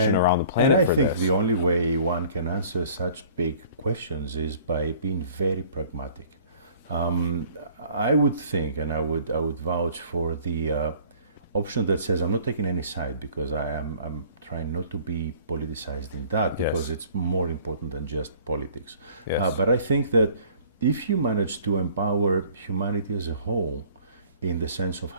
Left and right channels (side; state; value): both; inverted; correlation -0.52